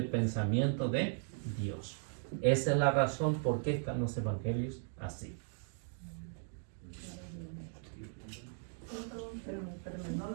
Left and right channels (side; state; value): left; silent; 53 dB below the other